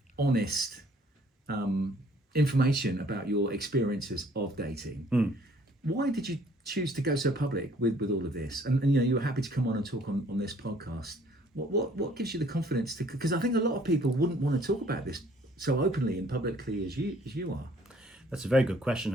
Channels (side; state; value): both; normal; correlation 0.59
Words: honest information about your experiences of dating, why did you choose to go so public with all of this? And you were happy to come on and talk on this podcast. What gives you the confidence to? Because I think a lot of people wouldn't want to talk about this so openly and publicly as you are. That's a very good question,